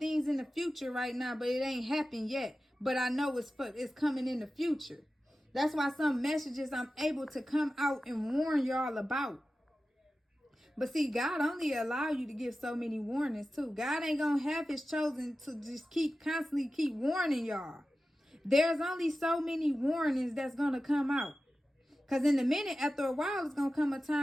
in the future right now, but it ain't happened yet. But I know it's coming in the future. That's why some messages I'm able to come out and warn y'all about. But see, God only allow you to give so many warnings too. God ain't gonna have his chosen to just constantly keep warning y'all. There's only so many warnings that's going to come out. Because in a minute, after a while, it's going to come a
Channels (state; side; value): normal; both; correlation 0.94